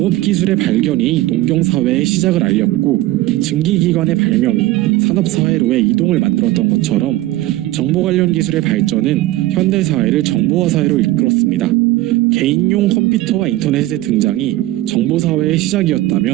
발견이 농경사회의 시작을 알렸고, 증기기관의 발명이 산업사회로의 이동을 만들었던 것처럼 정보 관련 기술의 발전은 현대사회를 정보화 사회로 이끌었습니다. 개인용 컴퓨터와 인터넷의 등장이 정보사회의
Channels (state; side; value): quieter; left; 16.8 dB